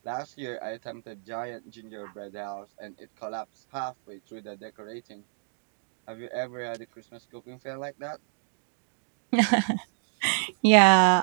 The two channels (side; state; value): left; silent; digital silence